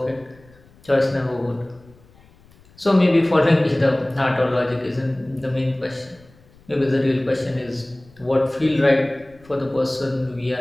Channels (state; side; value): noise; left; rumble, 27 dB below the sound